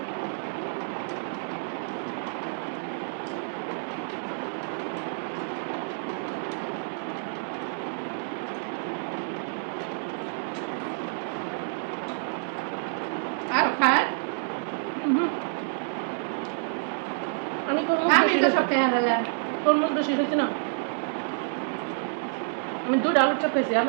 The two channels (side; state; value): left; silent; 59 dB below the other